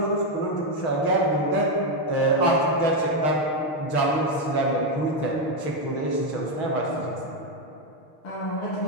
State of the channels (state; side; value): late; right; 6.3 ms